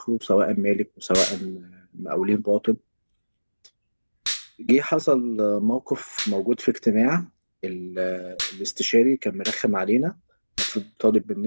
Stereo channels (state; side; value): inverted; both; correlation -1.00